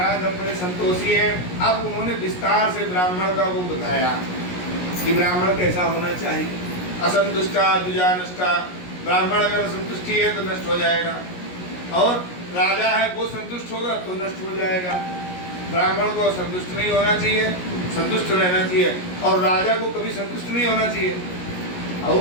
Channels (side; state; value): right; late; 17 ms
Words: हम बड़े संतोषी हैं। अब उन्होंने विस्तार से ब्राह्मण का वो बताया कि ब्राह्मण कैसा होना चाहिए। असंतुष्टा द्विजानष्टा, ब्राह्मण अगर संतुष्टि है तो नष्ट हो जाएगा, और राजा है वो संतुष्ट होगा तो नष्ट हो जाएगा। ब्राह्मण को संतुष्ट नहीं होना चाहिए, संतुष्ट रहना चाहिए, और राजा को कभी संतुष्ट नहीं होना चाहिए,